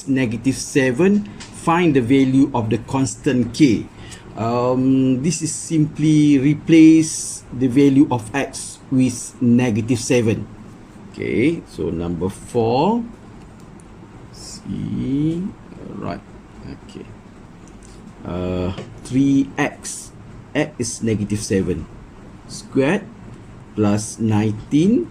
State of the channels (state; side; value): identical; both; correlation 1.00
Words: negative 7, find the value of the constant k. This is simply replace the value of x with negative 7. Okay, so number 4. See, right. Okay. 3x, x is negative 7 squared plus 19